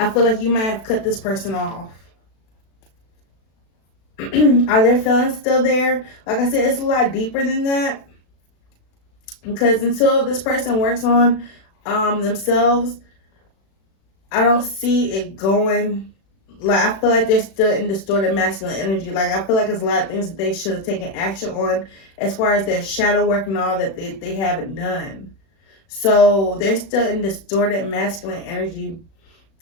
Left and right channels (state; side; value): late; right; 36 ms